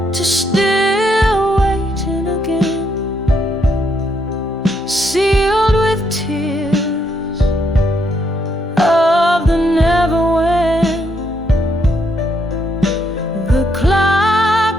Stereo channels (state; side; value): normal; both; correlation 0.75